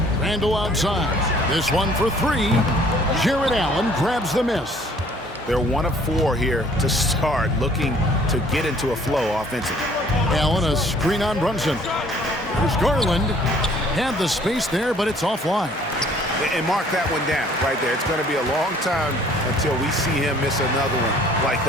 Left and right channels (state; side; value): normal; both; correlation 0.57